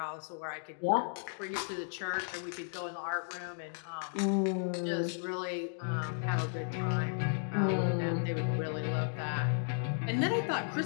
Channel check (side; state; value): right; silent; digital silence